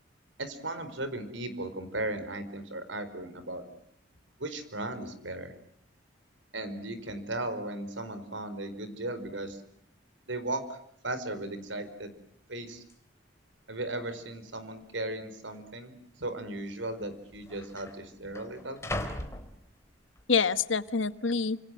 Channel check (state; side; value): normal; both; correlation -0.07